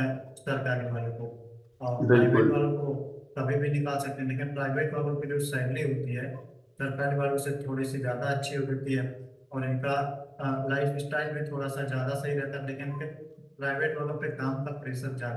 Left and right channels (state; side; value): identical; both; correlation 1.00